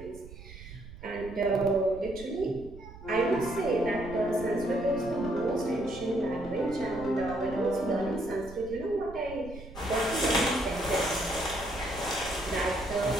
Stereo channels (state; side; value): noise; right; rumble, 15 dB below the sound